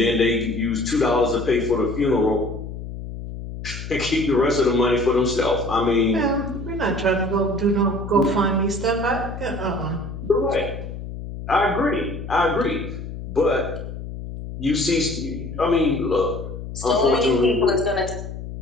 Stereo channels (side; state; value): left; noise; hum, 9 dB below the sound